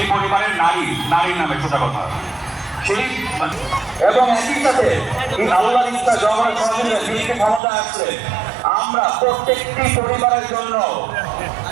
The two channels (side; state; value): left; drops out; at 7.6 s